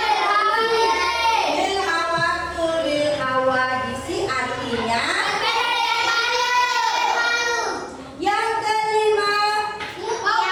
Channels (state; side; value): identical; both; correlation 1.00